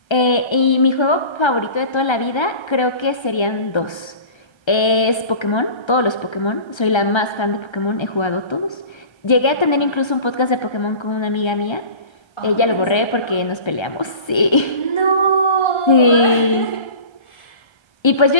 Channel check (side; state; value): right; late; 1.3 ms